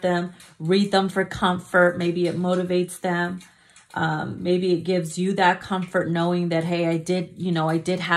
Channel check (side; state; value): both; identical; correlation 1.00